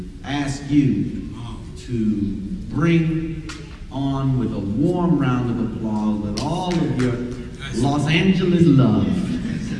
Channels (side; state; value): both; identical; correlation 1.00